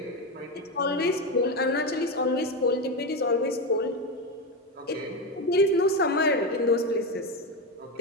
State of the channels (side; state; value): both; normal; correlation 0.14